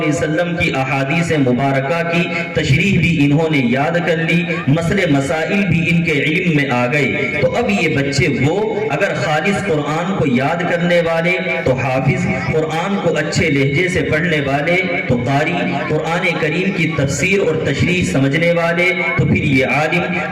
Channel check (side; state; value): both; identical; correlation 1.00